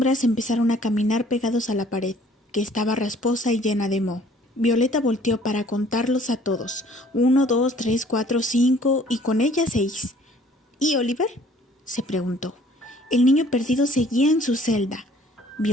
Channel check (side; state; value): both; normal; correlation 0.56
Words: empezaron a caminar pegados a la pared, que estaba rasposa y llena de moho. Violeta volteó para contarlos a todos. 1, 2, 3, 4, 5 y con ella 6. ¿Y Oliver?, se preguntó. El niño perdido seguía en su celda.